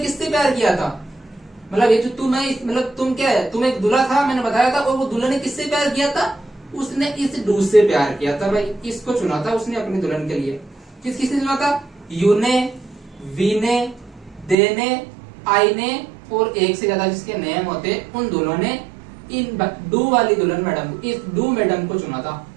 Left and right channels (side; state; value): left; drops out; at 14.6 s